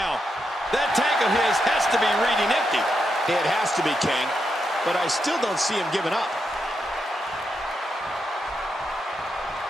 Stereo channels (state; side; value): normal; both; correlation 0.84